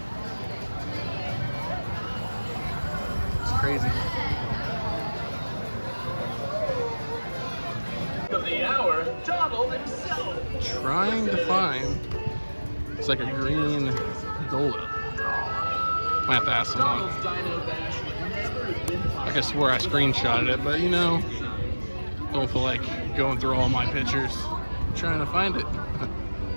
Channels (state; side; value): inverted; both; correlation -1.00